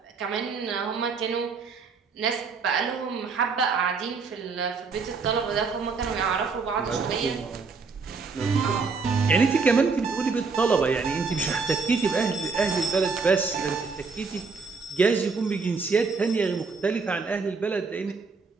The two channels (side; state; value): left; quieter; 4.7 dB